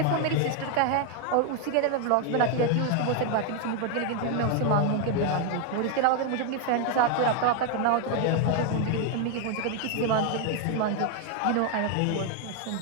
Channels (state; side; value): different; both; correlation 0.01